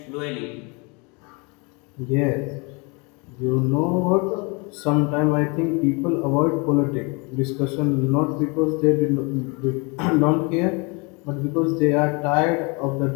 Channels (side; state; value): right; quieter; 30.6 dB